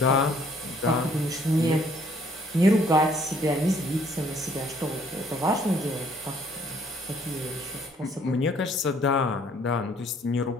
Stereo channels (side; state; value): both; normal; correlation 0.62